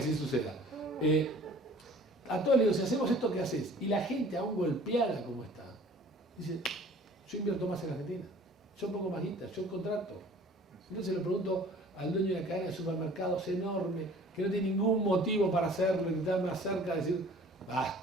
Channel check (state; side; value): normal; both; correlation 0.49